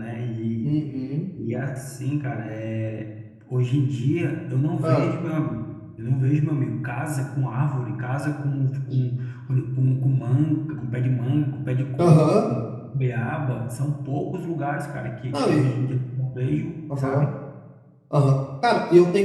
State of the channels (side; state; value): both; identical; correlation 1.00